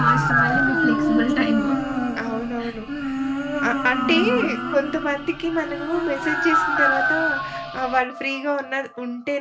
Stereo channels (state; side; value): identical; both; correlation 1.00